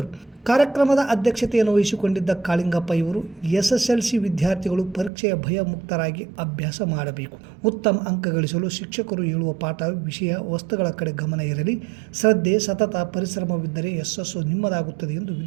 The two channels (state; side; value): drops out; left; at 5.1 s